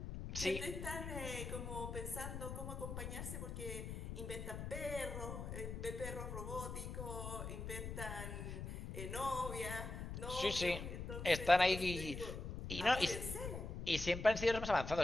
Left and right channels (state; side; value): noise; left; rumble, 6 dB below the sound